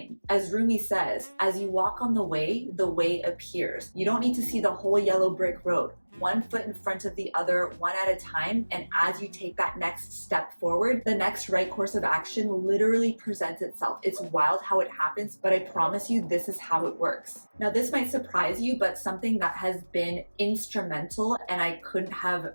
As Rumi says, as you walk on the way appears. You don't need to see the whole yellow brick road. One foot in front of the other, one at a time, and as you take that next step forward, the next right course of action literally presents itself. It's wild how it happens, but I promise you this is how it works. Now this might surprise you, but something that has been instrumental, and I couldn't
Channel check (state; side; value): inverted; both; correlation -1.00